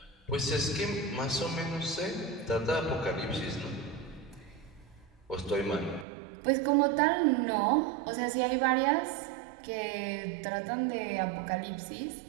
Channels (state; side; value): drops out; left; at 6.1 s